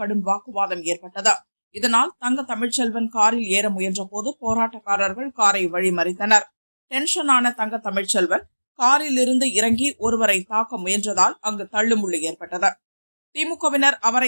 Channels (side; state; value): both; inverted; correlation -1.00